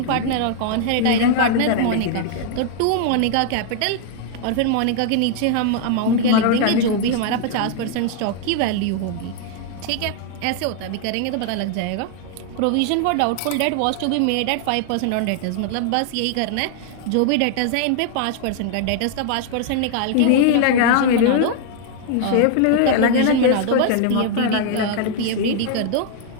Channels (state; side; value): different; both; correlation 0.00